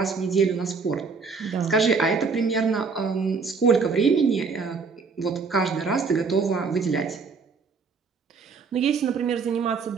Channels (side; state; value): left; quieter; 4.9 dB